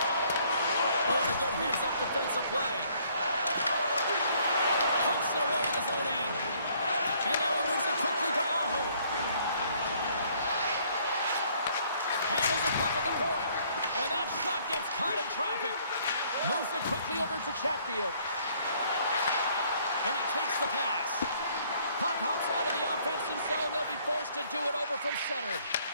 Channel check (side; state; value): both; inverted; correlation -0.63